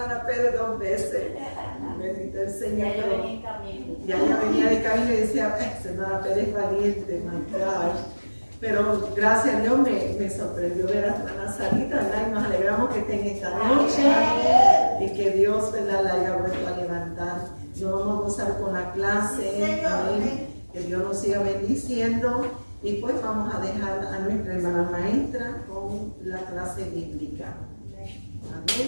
Pérez 2 veces. Bendito el Señor. Ya venía de camino y decía, ay, hermana Pérez valiente, my gosh. Pero gracias a Dios me sorprendió ver a la hermana Sarita, ¿verdad? Y nos alegramos que estén esta noche y que Dios, ¿verdad?, la haya vuelto a levantar. Nos vamos a gozar con la clase, amén. Que Dios nos siga bendiciendo. Y pues vamos a dejar a nuestra hermana maestra con la clase bíblica.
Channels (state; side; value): inverted; both; correlation -1.00